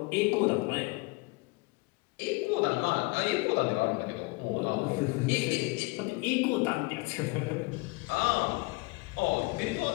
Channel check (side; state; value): right; quieter; 25.6 dB